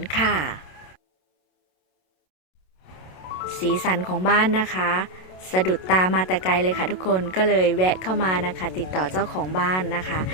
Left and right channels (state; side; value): late; right; 27 ms